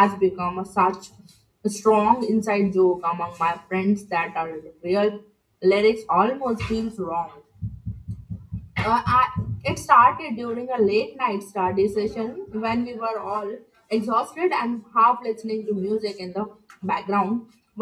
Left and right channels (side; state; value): both; identical; correlation 1.00